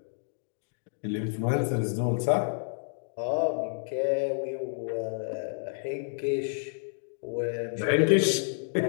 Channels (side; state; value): right; silent; digital silence